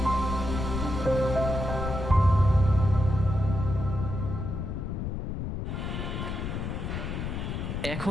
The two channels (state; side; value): noise; left; rumble, 4 dB below the sound